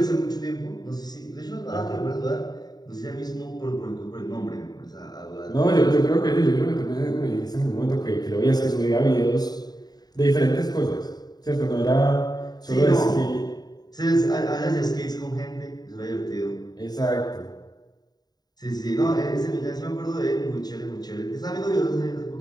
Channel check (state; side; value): late; right; 0.19 ms